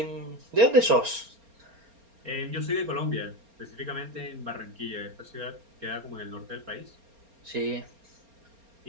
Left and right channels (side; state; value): left; late; 4.3 ms